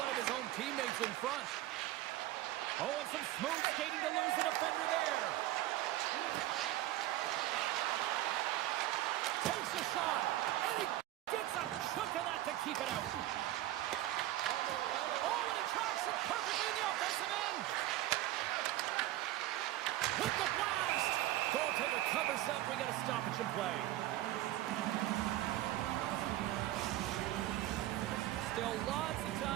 of his own teammates in front. Oh, and some smooth skating to lose the defender there. Takes a shot. And he gets a chunk of that to keep it out. Oh, and he tracks it perfectly in the offensive end. With the blast. Goaltender covers up. We got a stoppage in play. Still lots of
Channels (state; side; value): quieter; left; 15.1 dB